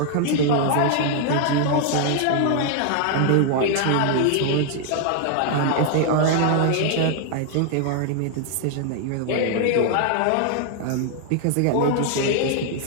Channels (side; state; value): both; different; correlation 0.00